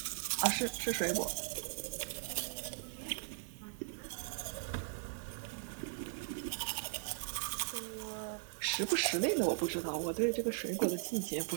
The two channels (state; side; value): silent; left; digital silence